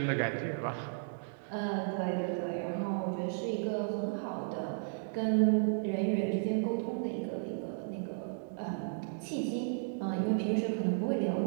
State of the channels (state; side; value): silent; left; digital silence